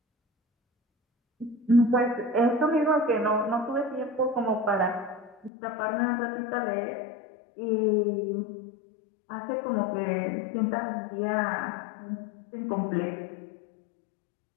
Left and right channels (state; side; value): drops out; right; at 5.5 s